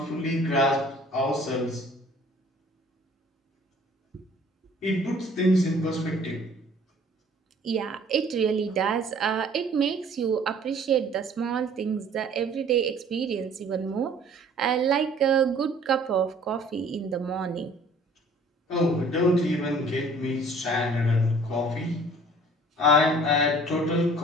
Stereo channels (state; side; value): normal; both; correlation 0.53